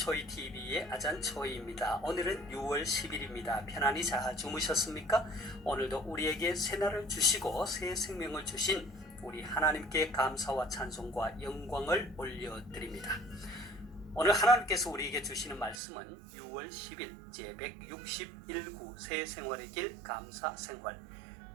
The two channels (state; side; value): drops out; left; at 15.8 s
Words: 아잔초이입니다. 오늘은 6월 10일입니다. 편안히 잘 주무셨습니까? 오늘도 우리에게 새날을 주시고 새 생명을 주신 우리 하나님께 감사와 찬송과 영광을 올려드립니다. 오늘 하나님께서 우리에게 주시는 말씀은 6월 10일 제161구 새 생활의 길 감사 생활